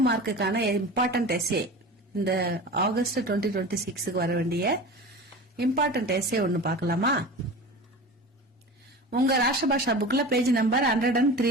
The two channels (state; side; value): normal; both; correlation 0.33